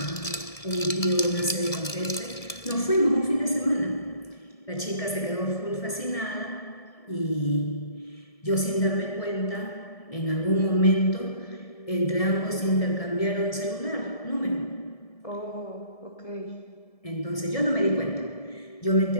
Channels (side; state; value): right; late; 1.7 ms